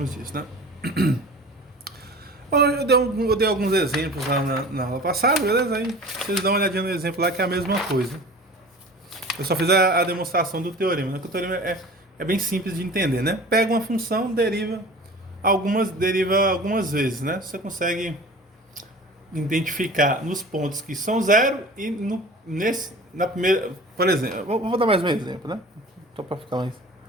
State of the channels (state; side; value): normal; both; correlation 0.40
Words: disso, né? Bom, eu dei alguns exemplos lá na aula passada, beleza? Aí vocês dão uma olhadinha no exemplo lá que é a mesma coisa. Eu só fiz a demonstração do teorema, né? Que o teorema é bem simples de entender, né? Pega uma função, deriva algumas vezes, né? Você consegue identificar nos pontos que são zero e na primeira, por exemplo, vou dar mais um exemplo, né? Só para ficar